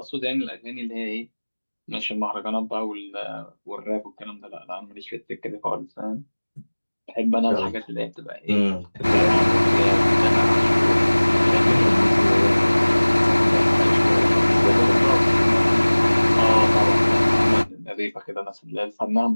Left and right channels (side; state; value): both; inverted; correlation -1.00